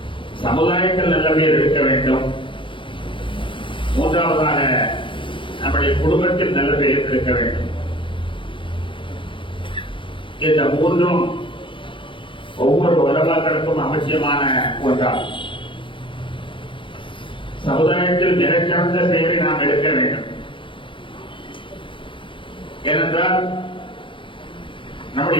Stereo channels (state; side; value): late; right; 0.25 ms